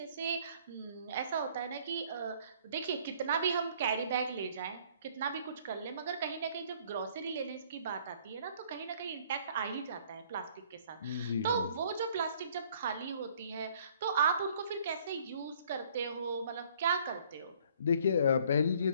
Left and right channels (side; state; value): both; inverted; correlation -0.59